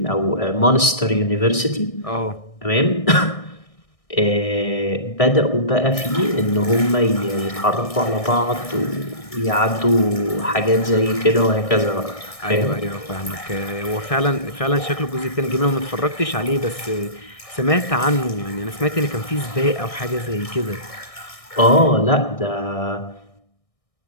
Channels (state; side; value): late; right; 1.6 ms